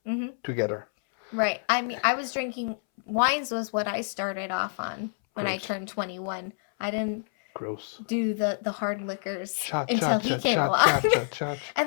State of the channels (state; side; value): silent; right; 60 dB below the other